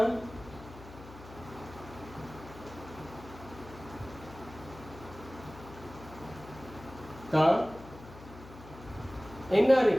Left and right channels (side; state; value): left; noise; hum, 16 dB below the sound